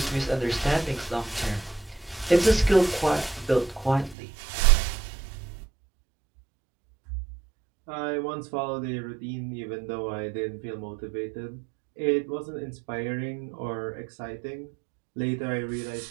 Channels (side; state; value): left; drops out; at 4.2 s